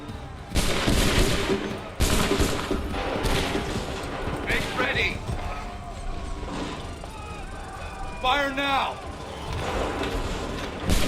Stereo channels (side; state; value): both; identical; correlation 1.00